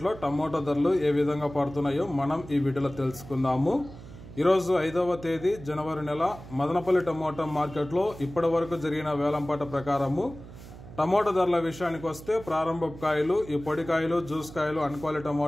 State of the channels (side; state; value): right; noise; hum, 16 dB below the sound